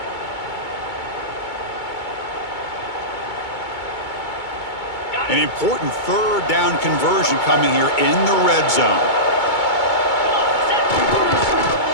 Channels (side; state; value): right; late; 2.2 ms